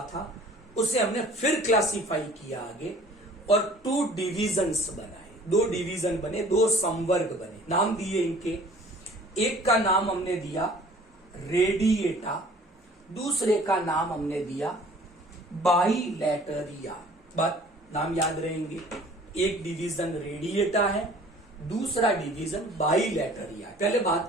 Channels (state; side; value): normal; both; correlation 0.51